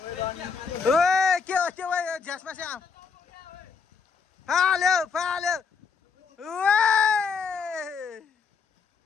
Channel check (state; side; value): quieter; right; 5.5 dB